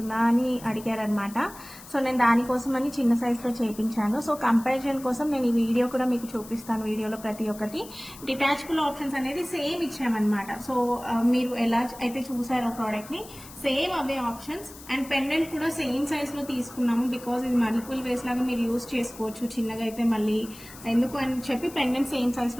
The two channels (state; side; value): noise; left; hiss, 18 dB below the sound